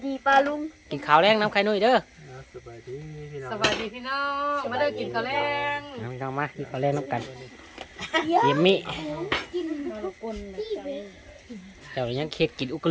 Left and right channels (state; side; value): identical; both; correlation 1.00